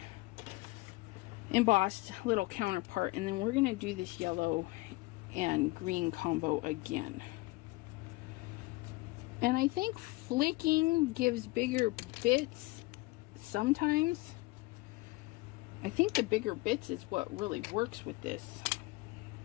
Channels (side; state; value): right; quieter; 22.2 dB